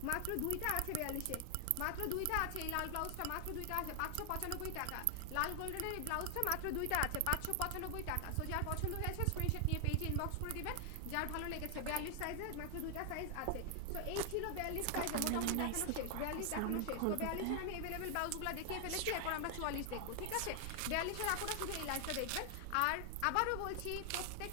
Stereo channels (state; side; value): different; both; correlation 0.00